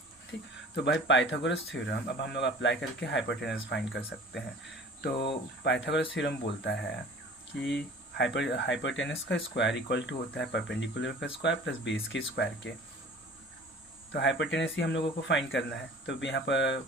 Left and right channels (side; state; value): both; normal; correlation 0.45